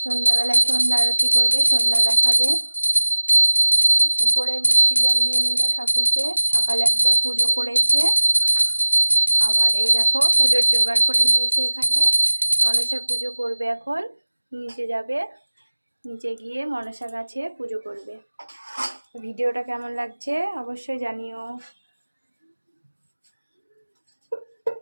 সন্ধ্যাবেলায় সন্ধ্যা আরতি করবে, সন্ধ্যা দেখাবে। উপরে মিষ্টি জল দিয়ে নিল ঠাকুরকে। সকালে একবার পুজো করেছে, আবার এই দেখো পুজোর জোগাড় করে নিয়েছে। এখানে মনসা পুজো করবে এখন। নিচে যাবে, নিচে গিয়ে মনসা গাছে পুজো করবে। ভিডিওটা কেমন লাগছে অবশ্যই জানিও।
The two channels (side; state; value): both; inverted; correlation -1.00